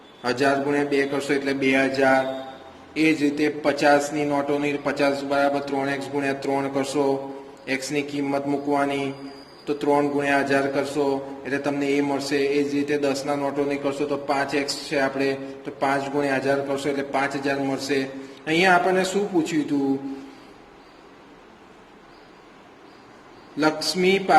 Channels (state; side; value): identical; both; correlation 1.00